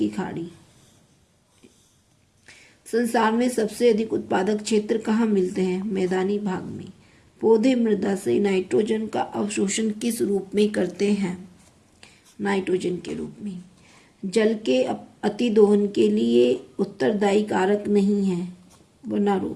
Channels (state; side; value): identical; both; correlation 1.00